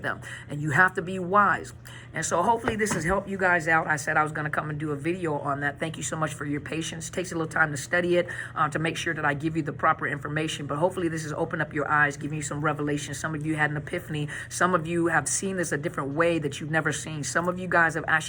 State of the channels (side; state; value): both; identical; correlation 1.00